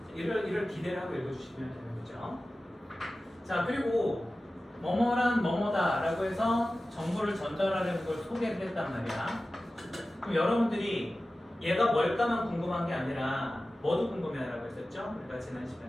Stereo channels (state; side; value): normal; both; correlation 0.95